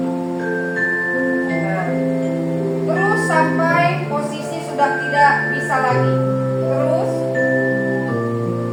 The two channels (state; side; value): identical; both; correlation 1.00